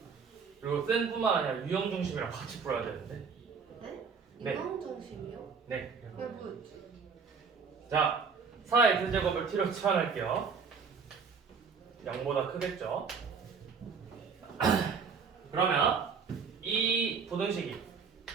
그리고 센뿐만 아니라 유형 중심이랑 같이 풀어야 되는데. 네? 네. 유형 중심이요? 네. 왜 뭐였지? 자, 4x제곱을 t로 치환할게요. 0보다 크겠죠? 그러면 이 부등식이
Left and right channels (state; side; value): quieter; left; 5.7 dB